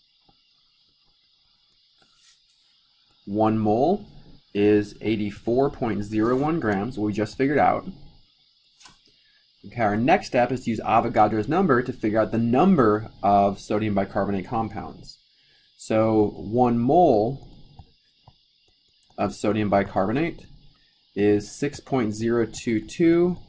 1 mole is 84.01 grams, what we just figured out. Okay, our next step is to use Avogadro's number to figure out the number of sodium bicarbonate compounds. So 1 mole of sodium bicarbonate is 6.022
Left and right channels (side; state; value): both; identical; correlation 1.00